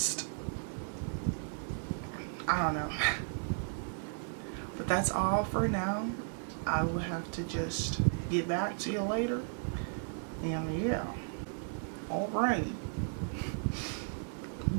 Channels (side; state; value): left; silent; digital silence